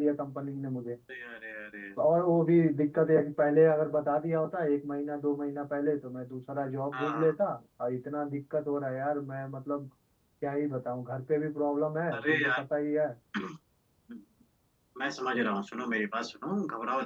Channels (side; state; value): both; identical; correlation 1.00